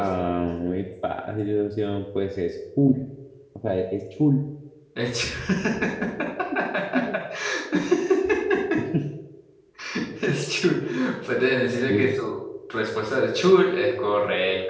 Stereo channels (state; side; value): identical; both; correlation 1.00